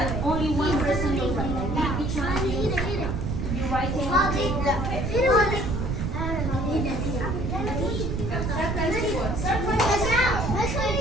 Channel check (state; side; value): noise; right; rumble, 1 dB below the sound